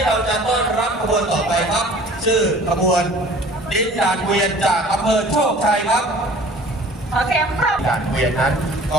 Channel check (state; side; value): normal; both; correlation 0.48